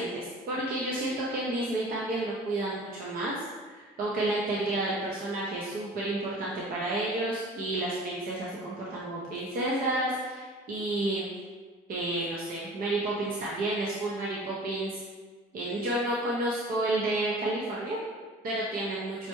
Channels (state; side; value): normal; both; correlation 0.43